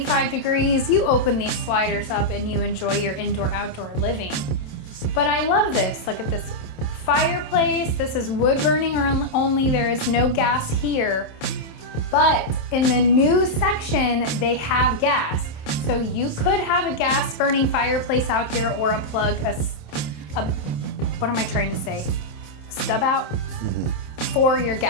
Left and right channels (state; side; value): late; right; 27 ms